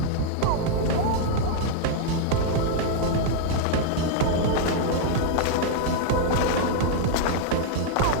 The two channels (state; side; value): different; both; correlation -0.01